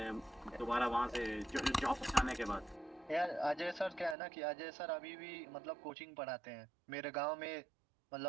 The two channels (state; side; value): drops out; left; at 4.2 s